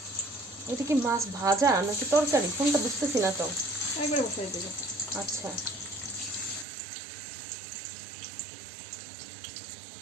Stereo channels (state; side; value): drops out; left; at 6.7 s